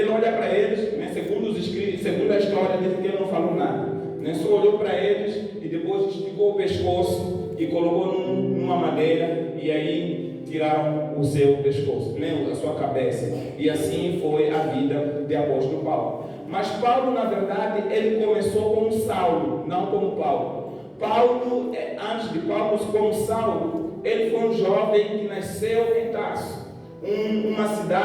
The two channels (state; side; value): identical; both; correlation 1.00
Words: olha para eles, né, segundo os escritos, segundo a história, diz que ele não falou nada, né, só olhou para eles e depois esticou o pescoço e colocou numa madeira, e aí tiraram o seu pescoço, né, a sua cabeça. E assim foi a vida de apóstolo Paulo. Mas Paulo, na verdade, ele começou como Saulo, não como Paulo. Paulo, antes de Paulo como Saulo, ele foi um jovem que nasceu em Tarso, uma